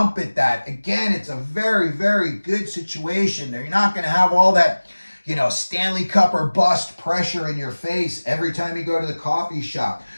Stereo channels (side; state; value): both; inverted; correlation -1.00